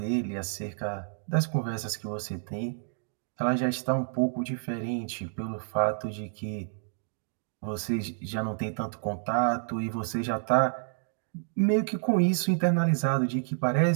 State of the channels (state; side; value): silent; left; digital silence